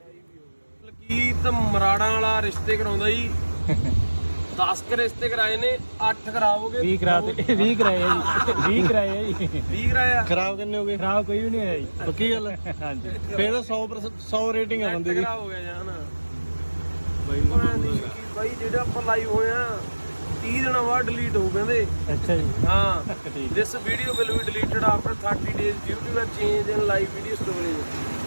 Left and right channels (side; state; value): both; inverted; correlation -1.00